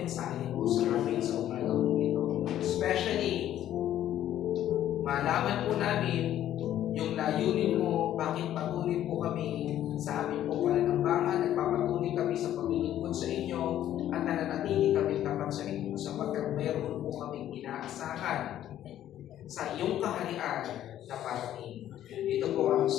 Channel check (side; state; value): right; quieter; 11.9 dB